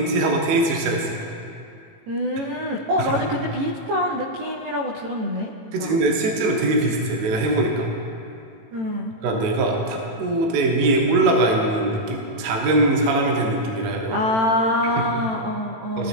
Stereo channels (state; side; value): late; left; 18 ms